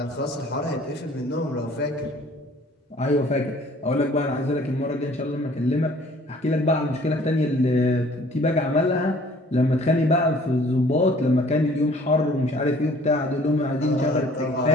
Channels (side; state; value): both; normal; correlation 0.54